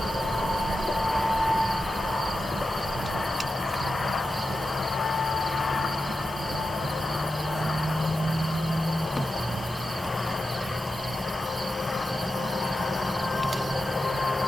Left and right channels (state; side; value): normal; both; correlation 0.90